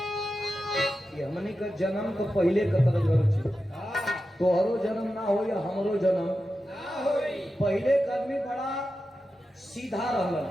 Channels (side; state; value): both; normal; correlation 0.91